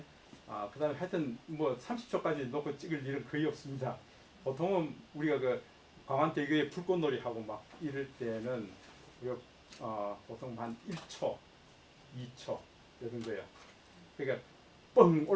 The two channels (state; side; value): identical; both; correlation 1.00